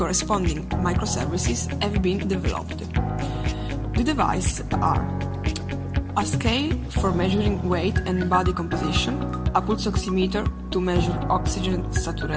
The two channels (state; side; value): identical; both; correlation 1.00